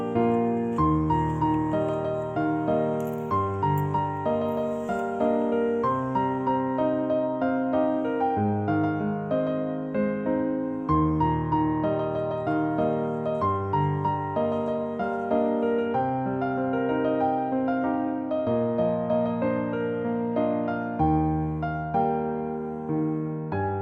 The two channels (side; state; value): both; identical; correlation 1.00